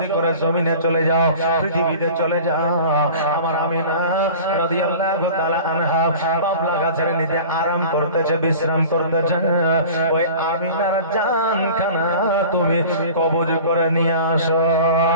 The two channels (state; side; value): inverted; both; correlation -0.40